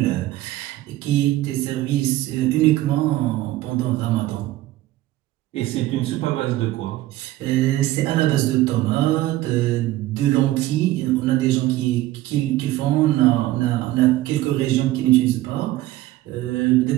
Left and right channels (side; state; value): left; quieter; 15.9 dB